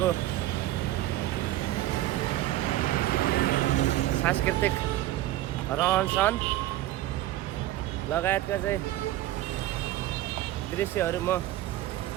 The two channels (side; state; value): left; quieter; 14.9 dB